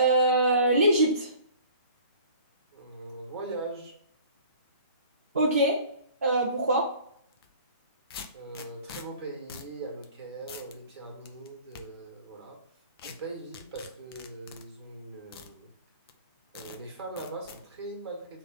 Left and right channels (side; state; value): both; inverted; correlation -0.47